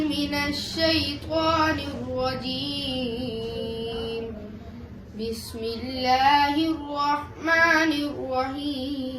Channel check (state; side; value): identical; both; correlation 1.00